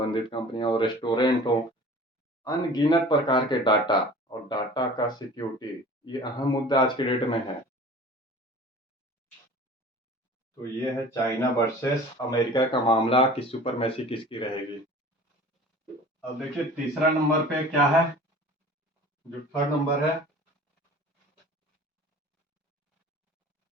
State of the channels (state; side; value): normal; both; correlation 0.43